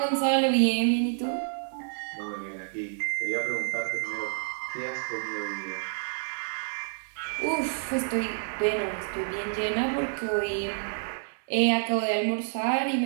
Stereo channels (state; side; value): silent; left; digital silence